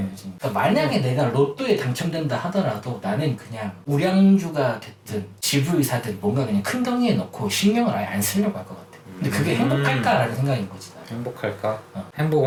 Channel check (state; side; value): identical; both; correlation 1.00